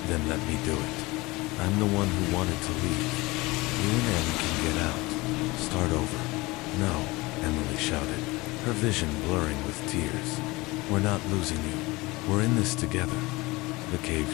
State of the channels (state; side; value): quieter; right; 22.4 dB